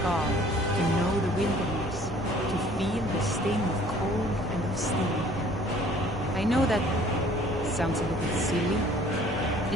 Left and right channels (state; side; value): normal; both; correlation 0.54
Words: to know the wilderness, to feel the sting of cold and of steel. I know that sounds a little silly.